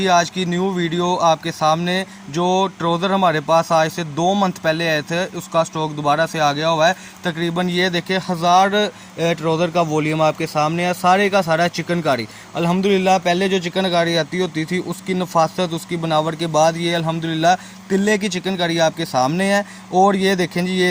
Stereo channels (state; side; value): identical; both; correlation 1.00